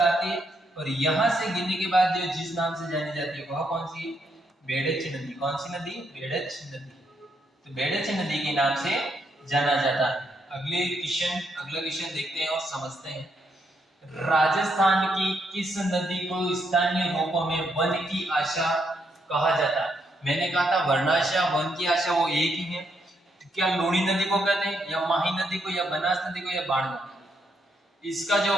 आती है और यहाँ से गिरने के बाद जो जिस नाम से जानी जाती है वह कौन सी है? बेड़च नदी। कौन सी नदी? बेड़च नदी। तो बेड़च नदी के नाम से जाना जाता है। अगला क्वेश्चन देखते हैं और समझते हैं। राजस्थान की किस नदी को स्थानीय रूपों में वन की आशा कहा जाता है? मैंने कहा था वर्णाशा वन की आशा वो एक ही है। क्या लूणी नदी को कहते हैं या माही नदी को या बनास नदी को या बाण नदी? इसका जो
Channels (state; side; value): normal; both; correlation 0.77